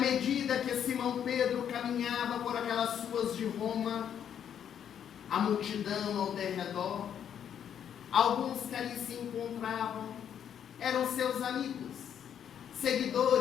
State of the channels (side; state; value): right; quieter; 9.0 dB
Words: que Simão Pedro caminhava por aquelas ruas de Roma, a multidão ao derredor, alguns que ali se encontravam, eram seus amigos,